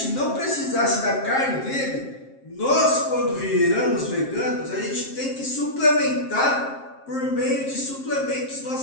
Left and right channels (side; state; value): right; late; 7.5 ms